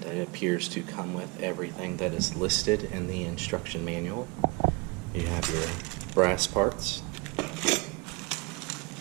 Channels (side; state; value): left; quieter; 27.1 dB